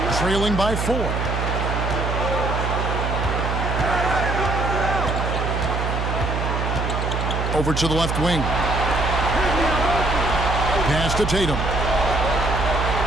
trailing by 4. Over to the left wing. Pass to Tatum.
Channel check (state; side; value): noise; right; hum, 1 dB below the sound